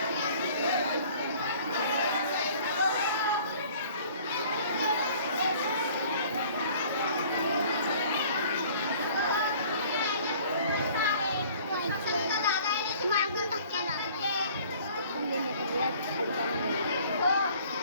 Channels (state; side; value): inverted; both; correlation -0.52